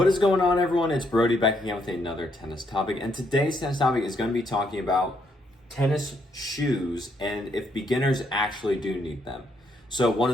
is going on, everyone? It's Brody back again with another tennis topic, and today's tennis topic is going to be talking about tennis shoes and if beginners actually do need them. So one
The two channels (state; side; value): normal; both; correlation 0.74